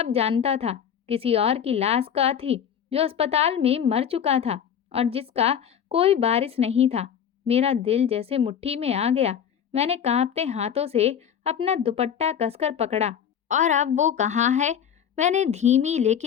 जानता था। किसी और की लाश का थी जो अस्पताल में मर चुका था और जिसका कोई वारिस नहीं था। मेरा दिल जैसे मुट्ठी में आ गया। मैंने कांपते हाथों से अपना दुपट्टा कसकर पकड़ा। और अब वो कहाँ है? मैंने धीमी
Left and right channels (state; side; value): quieter; right; 8.5 dB